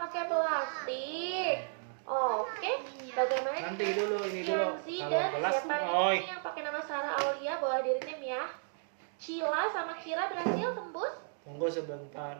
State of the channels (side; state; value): left; silent; digital silence